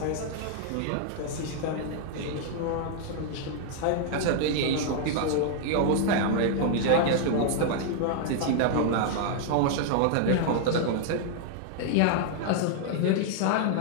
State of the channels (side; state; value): both; different; correlation 0.00